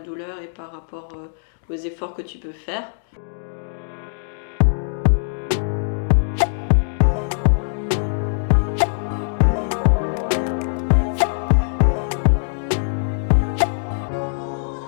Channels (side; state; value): right; silent; digital silence